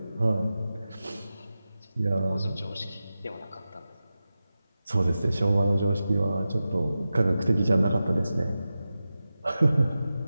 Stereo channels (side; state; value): both; inverted; correlation -0.93